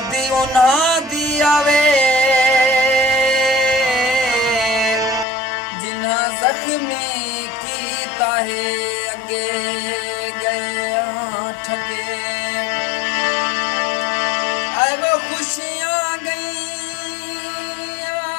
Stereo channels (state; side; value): drops out; right; at 5.2 s